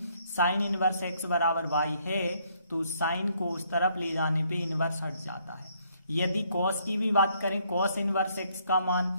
साइन इनवर्स एक्स बराबर y है तो साइन को उस तरफ ले जाने पे इनवर्स हट जाता है। यदि कॉस की भी बात करें, कॉस इनवर्स एक्स का मान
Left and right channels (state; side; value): inverted; both; correlation -0.68